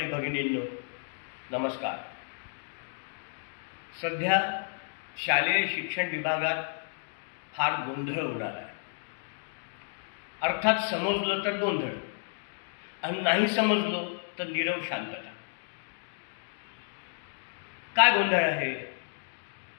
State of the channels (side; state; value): right; silent; digital silence